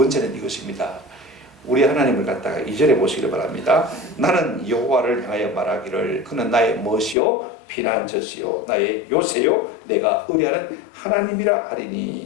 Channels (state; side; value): drops out; right; at 7.2 s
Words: 이것입니다. 우리 하나님을 갖다가 2절에 보시기를 바랍니다. 나는 여호와를 향하여 말하기를 그는 나의 멋이요 피난처시요 나의 요새요 내가 의뢰하는 하나님이라